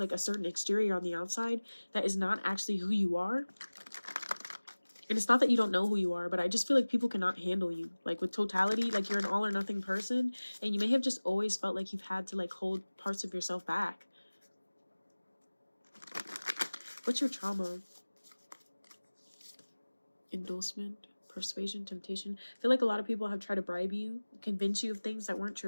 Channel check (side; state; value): both; inverted; correlation -1.00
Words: a certain exterior on the outside that is not actually who you are. And it's not that you don't know who you are, but I just feel like people cannot handle you. Like with totality, like you're an all or nothing person. And you may have just always felt like you've had to like hold parts of yourself back. What's your trauma? Endorsement, persuasion, temptation. I feel like a lot of people have tried to bribe you, convince you of things that weren't